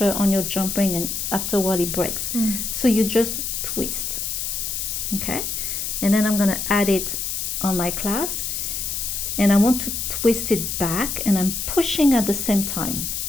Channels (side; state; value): left; noise; hiss, 3 dB below the sound